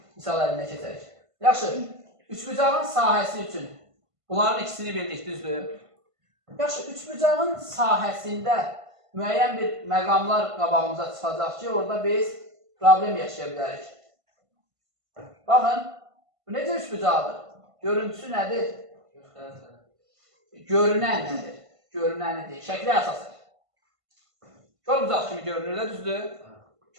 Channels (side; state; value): left; late; 1.5 ms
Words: misal əlinə keçərik. Yaxşı, üçbucağın sahəsi üçün bunların ikisini bildik, düzdür? Yaxşı, üçbucağın sahəsində müəyyən bir məqamlar qabağımıza çıxacaq ki, orada biz problem yaşaya bilərik. Baxın, bu necə üçbucaqdır? Görüntüsü nədir? Görünən nədir? Görünənidir. Şəkli əsasır. Körbucaq kimi görünür də, düzdür?